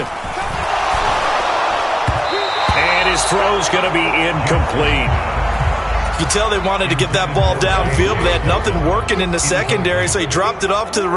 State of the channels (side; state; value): both; identical; correlation 1.00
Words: And his throw's going to be incomplete. You can tell they wanted to get that ball downfield, but they had nothing working in the secondary, so he dropped it off to the